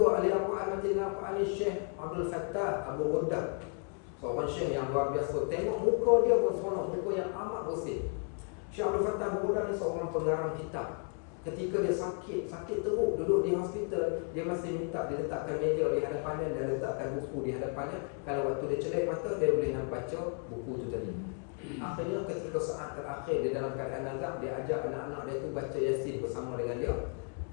ahli Al-Quran mati dengan Al-Quran ni Syekh Abdul Fattah Abu Ghuddah. Seorang syekh yang luar biasa. Tengok muka dia berseronok, muka yang amat bersih. Syekh Abdul Fattah Abu Ghuddah ni seorang pengarang kitab. Ketika dia sakit teruk, duduk di hospital, dia masih minta diletakkan meja di hadapannya dan letakkan buku di hadapannya. Kalau waktu dia celik mata, dia boleh nak baca buku tu tadi. Akhirnya ketika saat terakhir dia dalam keadaan nazak, dia ajak anak-anak dia tu baca Yasin bersama dengan dia.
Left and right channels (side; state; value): right; quieter; 37.7 dB